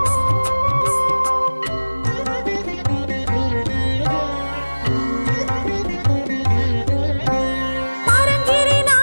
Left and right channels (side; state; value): both; inverted; correlation -1.00